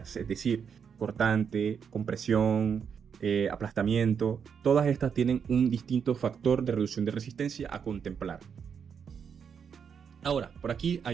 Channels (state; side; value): quieter; left; 7.0 dB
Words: es decir, cortante, compresión, aplastamiento. Todas estas tienen un distinto factor de reducción de resistencia a contemplar. Ahora, por aquí